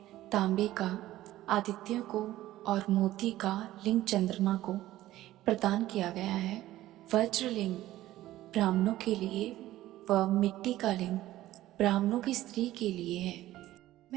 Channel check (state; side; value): quieter; left; 15.0 dB